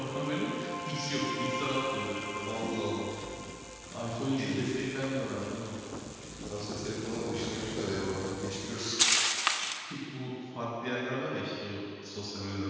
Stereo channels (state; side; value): identical; both; correlation 1.00